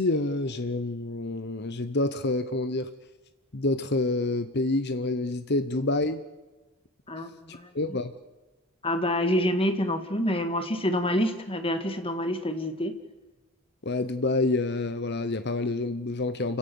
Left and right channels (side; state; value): both; normal; correlation 0.34